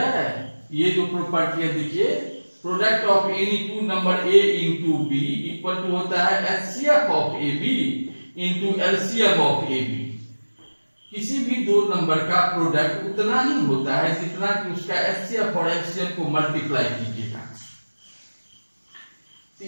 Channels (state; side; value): inverted; both; correlation -1.00